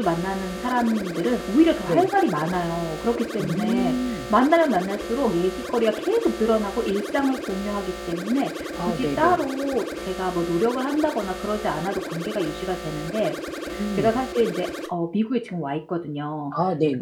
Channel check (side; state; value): both; identical; correlation 1.00